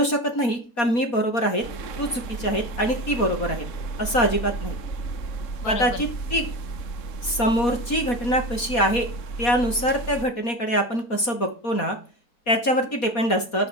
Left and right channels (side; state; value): right; late; 4.2 ms